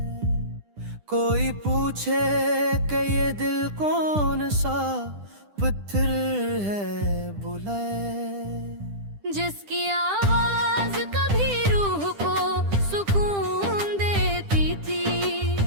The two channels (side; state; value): left; late; 10 ms